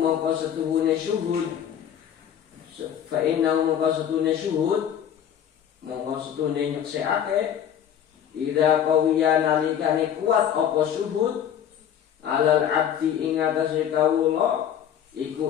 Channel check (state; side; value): quieter; right; 9.4 dB